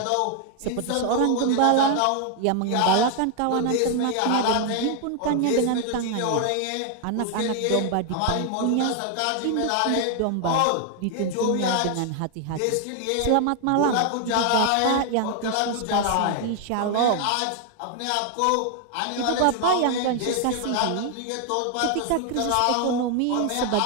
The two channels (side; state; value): both; different; correlation 0.00